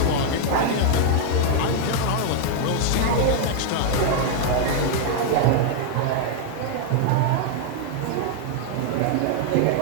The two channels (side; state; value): both; different; correlation 0.00